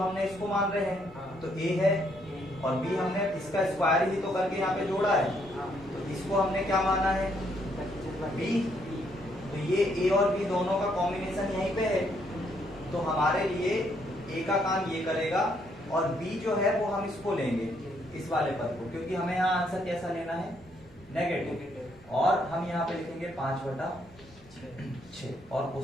इसको मान रहे हैं तो a है और b हमने इसका स्क्वायर ही तो करके यहाँ पे जोड़ा है, तो इसको हमने क्या माना है b, तो ये a और b दोनों का कॉम्बिनेशन यहीं पे है, तो हमारे लिए a का काम ये करेगा और b जो है वो हम इसको लेंगे इस वाले पद को, क्योंकि हमें यहाँ आंसर कैसा लेना है नेगेटिव, और हम यहाँ पे लिखेंगे 5/6 और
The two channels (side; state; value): both; normal; correlation 0.72